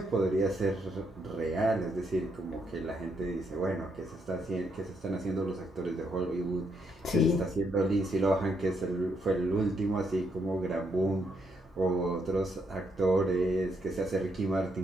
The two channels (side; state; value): both; normal; correlation 0.76